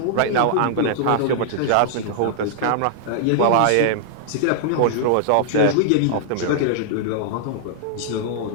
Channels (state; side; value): different; both; correlation -0.01